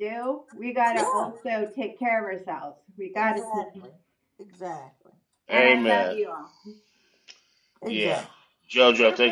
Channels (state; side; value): identical; both; correlation 1.00